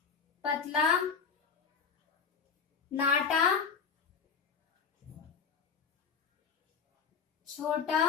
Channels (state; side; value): quieter; right; 6.0 dB